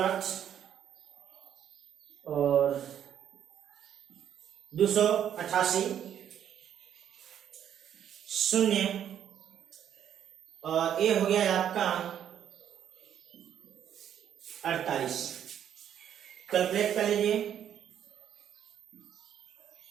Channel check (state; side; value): quieter; left; 9.7 dB